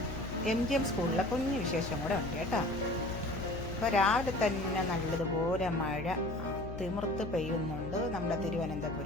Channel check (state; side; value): noise; left; hum, 8 dB below the sound